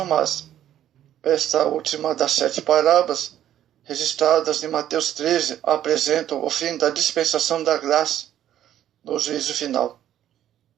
más. Esta última das 7 parábolas registradas em Mateus 13 apresenta o fim da dispensação da graça no juízo final.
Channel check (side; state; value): left; quieter; 11.5 dB